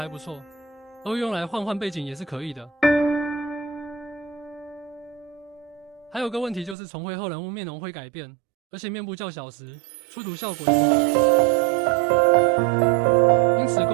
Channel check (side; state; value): left; drops out; at 6.8 s